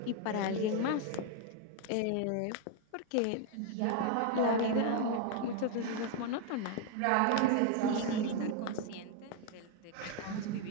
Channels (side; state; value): both; different; correlation 0.01